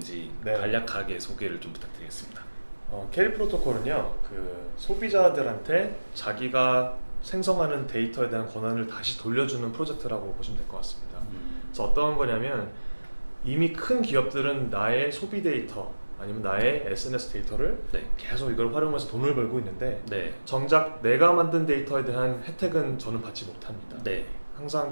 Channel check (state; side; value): inverted; both; correlation -1.00